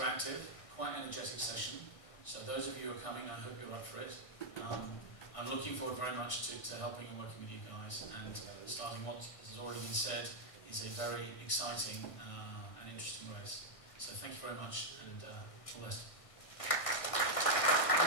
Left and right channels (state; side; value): late; right; 1.6 ms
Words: quite energetic session. So those of you who are coming, I hope you're up for it. I'm looking forward very much to helping and working with you guys, and starting what has already been said is a very exciting and interesting race. So thank you very much, and all the best.